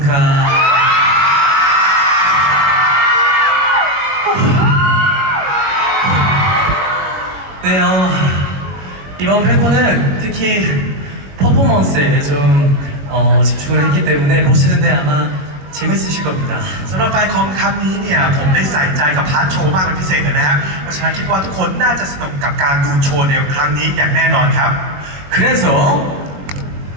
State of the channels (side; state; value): left; late; 22 ms